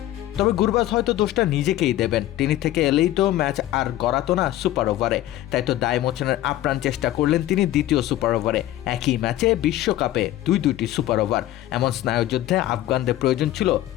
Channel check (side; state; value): right; quieter; 14.4 dB